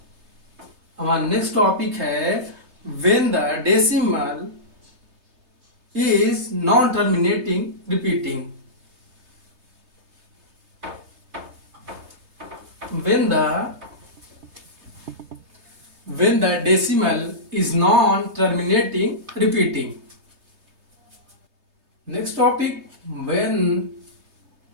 हमारा नेक्स्ट टॉपिक है when the decimal is non-terminating repeating। when the decimal is non-terminating repeating। next topic, when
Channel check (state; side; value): late; left; 3.3 ms